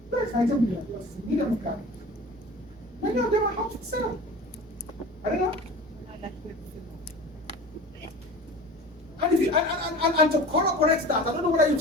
That's 19 billion. That's a million gallons. Many of them are how to sell. I don't know. And if you and to correct that, I don't know whether you've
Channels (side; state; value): both; normal; correlation 0.38